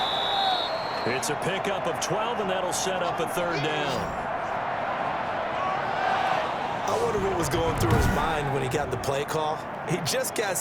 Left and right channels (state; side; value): identical; both; correlation 1.00